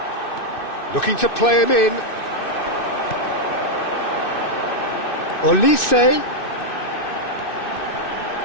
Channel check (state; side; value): late; right; 2.6 ms